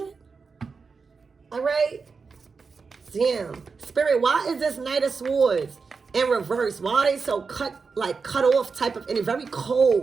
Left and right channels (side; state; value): left; quieter; 4.9 dB